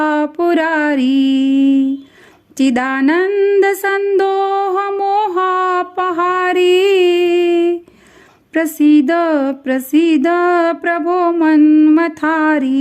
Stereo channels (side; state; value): both; identical; correlation 1.00